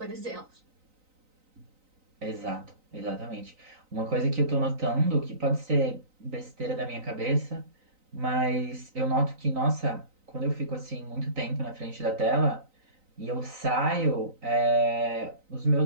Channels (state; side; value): late; left; 3.9 ms